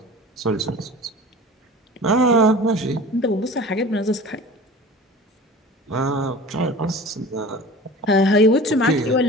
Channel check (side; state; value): both; normal; correlation 0.39